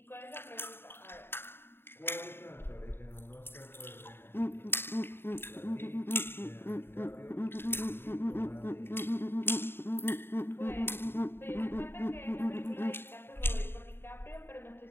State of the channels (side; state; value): right; late; 0.11 ms